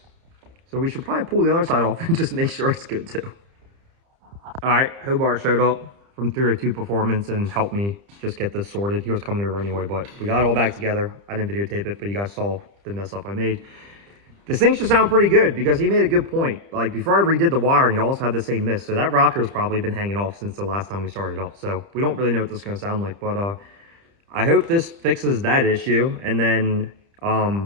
So we should probably pull the other side off and just make sure it's good too. All right, Hobart showed up from 302 Performance and helped me just get this sorted. He was coming over anyway, but we got it all back together. I didn't videotape it, but you guys saw the mess up I made. This thing should sound pretty good because he made a good point. Like before I redid the wiring, it also had the same miss. So that rocker's probably been hanging off since the last time we started up. So we don't really know what this is going to sound like, but I hope this fixes that issue. And then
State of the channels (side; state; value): left; late; 30 ms